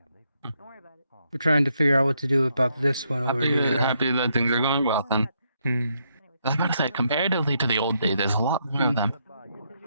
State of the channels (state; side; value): inverted; both; correlation -0.77